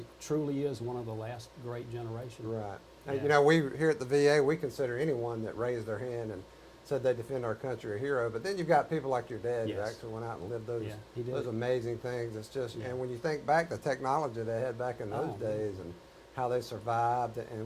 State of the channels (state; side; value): identical; both; correlation 1.00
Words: truly is one of the last great generation. Right. Yeah. And, you know, we here at the VA, we consider anyone that raised their hand and said they defend our country a hero. But then you've got people like your dad who Yes. actually went out and lived those he did. those amazing things. It's just, Yeah. and when you think back, the technology they had back in those Oh, days and how they survived